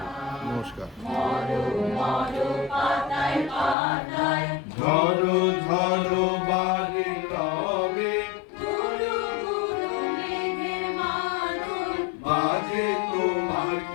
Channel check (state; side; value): drops out; right; at 3.8 s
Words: নমস্কার। ঝড়ো ঝড়ো বাড়ি রবে বাজে তোমার